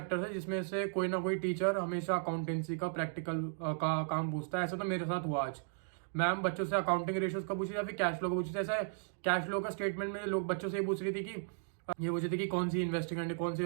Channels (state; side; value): silent; left; digital silence